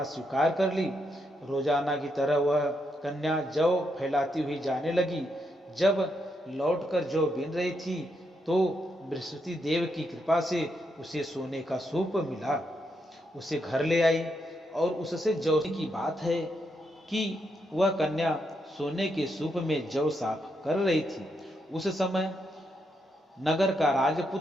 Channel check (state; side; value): normal; both; correlation 0.80